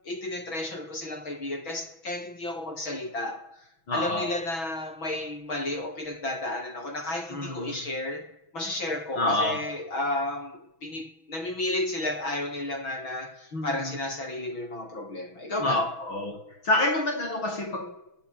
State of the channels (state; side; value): late; right; 6.1 ms